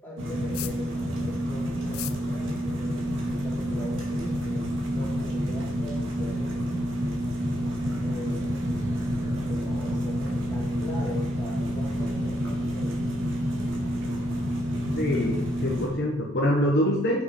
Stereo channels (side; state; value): both; normal; correlation 0.77